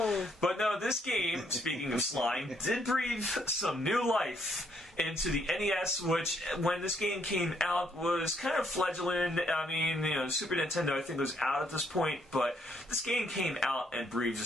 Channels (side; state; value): both; normal; correlation 0.71